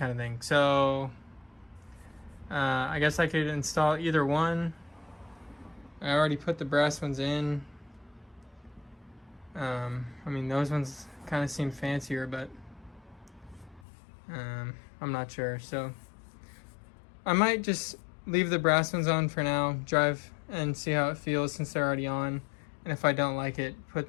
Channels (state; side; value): drops out; right; at 13.8 s